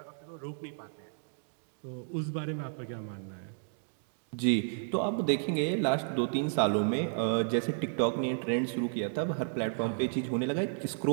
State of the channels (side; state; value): left; silent; digital silence